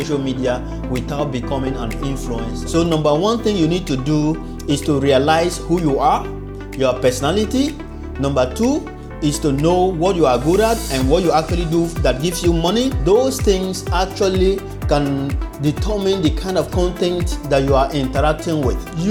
media without becoming an influencer. So number one thing you need to do is to realize who you are, your personality. Number two is to know what you are good at and what you actually do that gives you money. Those things actually can determine the kind of content that you are interacting with.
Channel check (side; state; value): both; identical; correlation 1.00